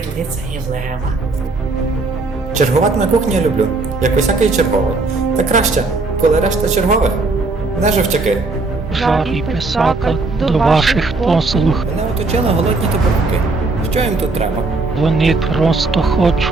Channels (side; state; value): left; quieter; 3.5 dB